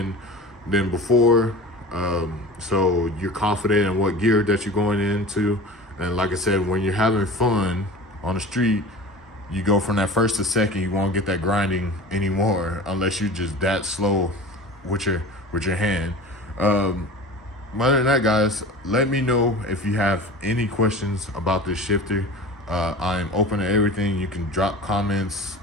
than before. So you're confident in what gear that you're going into. And like I said, when you're having fun on the street, you go from that first to second. You won't get that grinding anymore unless you're just that slow with your hand. Other than that, guys, let me know if you have any questions about this shifter. I'm open to everything. You can drop comments.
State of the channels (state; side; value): normal; both; correlation 0.36